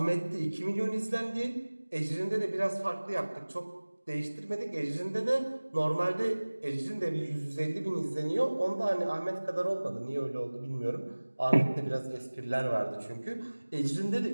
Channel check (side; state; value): both; inverted; correlation -1.00